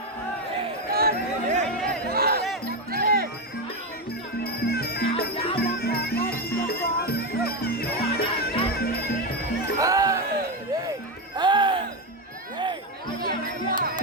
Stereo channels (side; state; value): both; normal; correlation 0.11